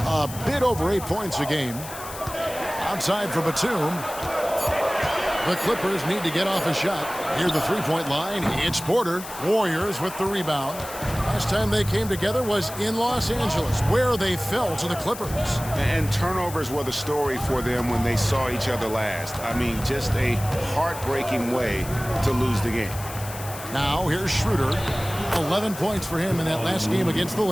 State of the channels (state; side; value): noise; left; hiss, 12 dB below the sound